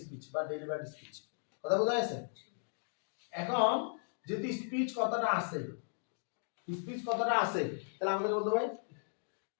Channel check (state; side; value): silent; right; digital silence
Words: স্পিচ বা ডেলিভারি স্পিচ, কথা বোঝা যাচ্ছে? এখন যদি স্পিচ কথাটা আছে তাহলে আমাদের বলতে হবে